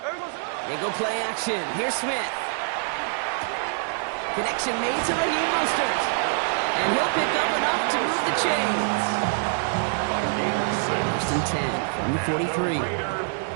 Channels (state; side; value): silent; left; 60 dB below the other